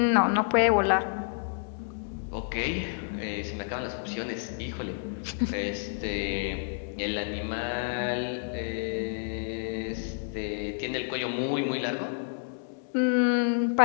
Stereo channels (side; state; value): right; silent; digital silence